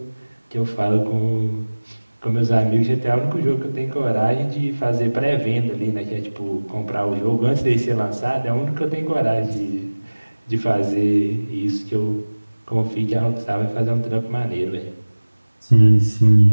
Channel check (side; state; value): both; inverted; correlation -1.00